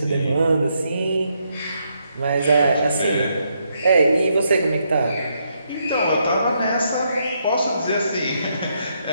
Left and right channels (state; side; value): inverted; both; correlation -0.77